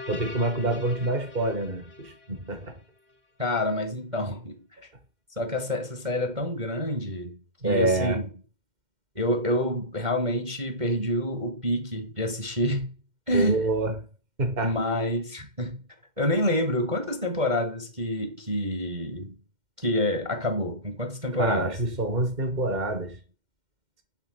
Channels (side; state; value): left; late; 2.1 ms